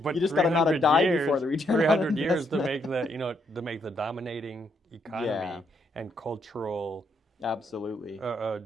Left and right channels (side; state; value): both; normal; correlation 0.75